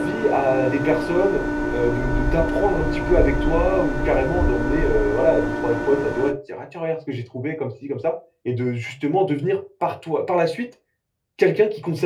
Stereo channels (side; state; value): both; identical; correlation 1.00